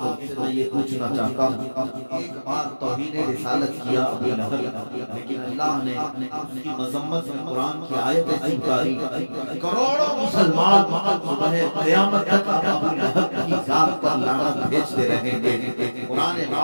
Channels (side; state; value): both; inverted; correlation -1.00